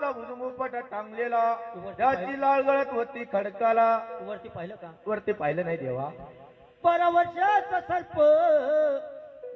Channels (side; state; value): both; identical; correlation 1.00